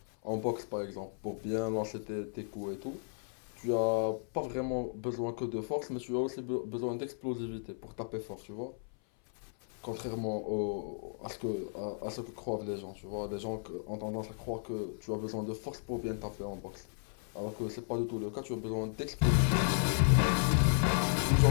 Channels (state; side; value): silent; right; 55 dB below the other